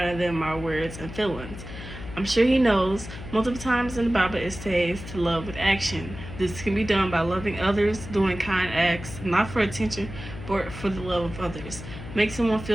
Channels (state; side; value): noise; left; hum, 11 dB below the sound